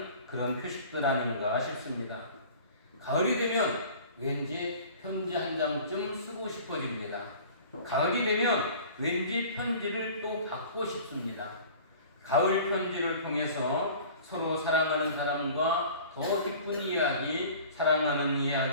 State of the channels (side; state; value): both; inverted; correlation -0.44